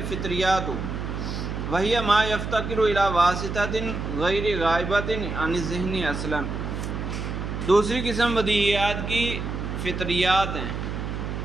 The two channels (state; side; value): noise; right; hum, 5 dB below the sound